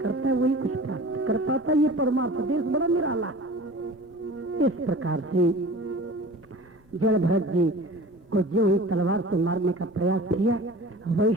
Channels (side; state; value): both; normal; correlation 0.40